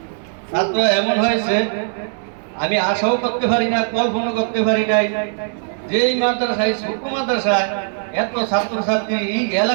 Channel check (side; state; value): left; silent; 62 dB below the other